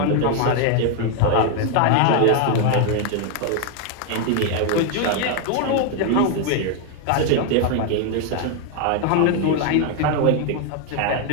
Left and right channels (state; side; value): different; both; correlation 0.01